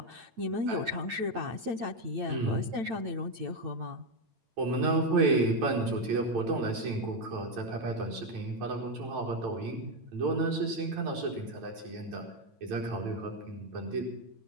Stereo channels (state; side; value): late; left; 8.9 ms